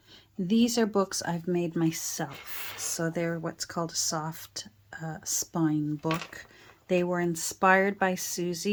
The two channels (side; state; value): both; identical; correlation 1.00